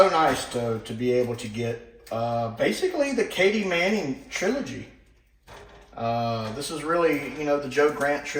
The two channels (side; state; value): both; identical; correlation 1.00